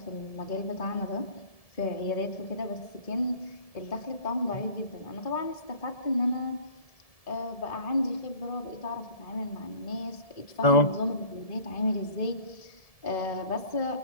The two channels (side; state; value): right; late; 1.7 ms